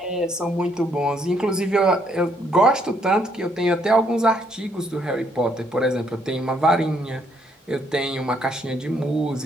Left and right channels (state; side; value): normal; both; correlation 0.71